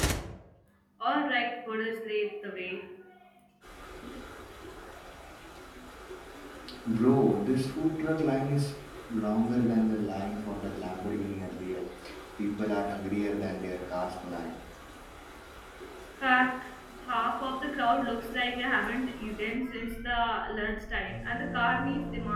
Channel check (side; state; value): both; identical; correlation 1.00